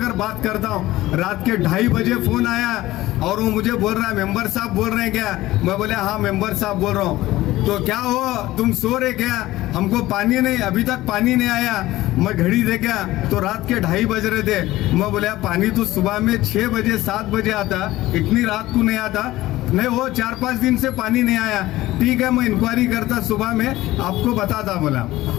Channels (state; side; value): quieter; right; 16.8 dB